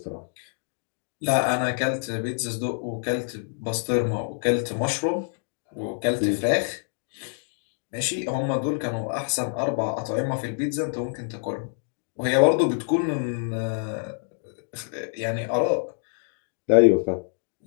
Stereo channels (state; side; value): silent; right; digital silence